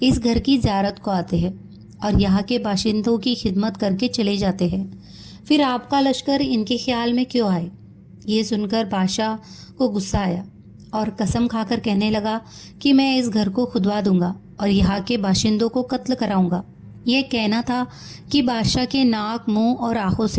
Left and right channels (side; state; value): both; identical; correlation 1.00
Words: इस घर की ज़ियारत को आते हैं और यहाँ के बाशिंदों की खिदमत करके चले जाते हैं। फिर आपका लश्कर इनके ख्याल में क्यों आए? ये सुनकर बादशाह को गुस्सा आया और कसम खाकर कहने लगा कि मैं इस घर को खुदवा दूंगा और यहाँ के बाशिंदों को कत्ल कराऊंगा। यह कहना था कि बादशाह के नाक, मुंह और आंखों